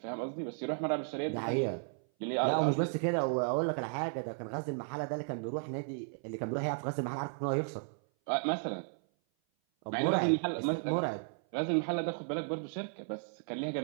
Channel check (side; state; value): left; silent; 55 dB below the other